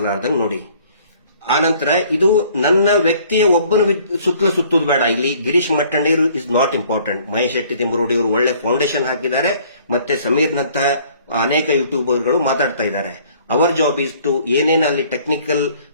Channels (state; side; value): inverted; both; correlation -0.57